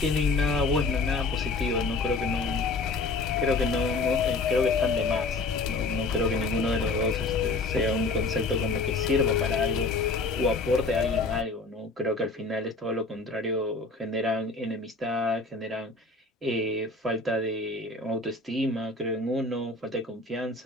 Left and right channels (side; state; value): right; quieter; 3.5 dB